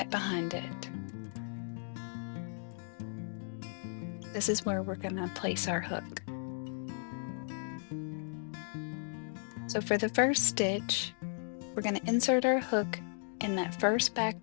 behind it. This is where we're going to place our hook. So for the first stitch, we're going to insert our hook in that first back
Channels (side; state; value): right; silent; digital silence